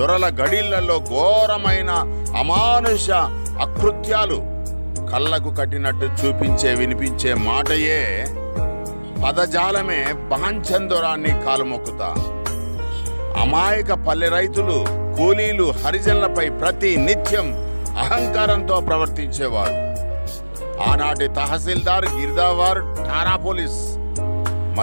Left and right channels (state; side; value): inverted; both; correlation -1.00